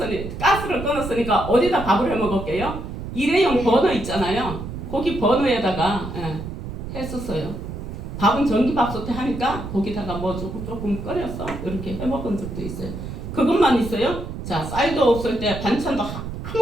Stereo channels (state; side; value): noise; right; rumble, 8 dB below the sound